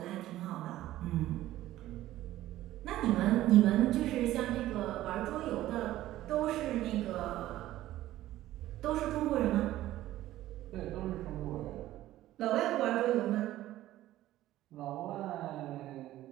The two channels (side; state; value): left; quieter; 14.7 dB